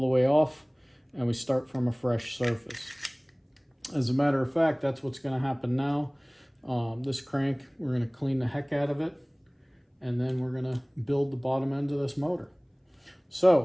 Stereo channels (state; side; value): identical; both; correlation 1.00